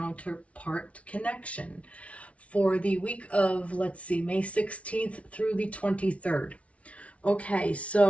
connection for the week of, let's see, May 16th through the 23rd. Okay,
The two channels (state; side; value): late; right; 0.064 ms